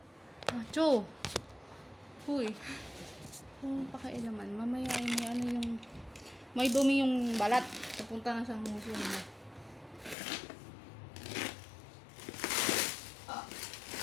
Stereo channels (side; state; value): right; drops out; at 10.2 s